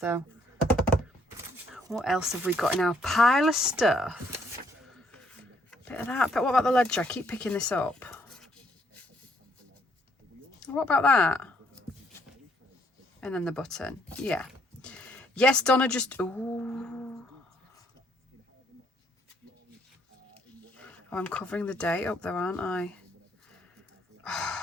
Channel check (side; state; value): both; normal; correlation 0.69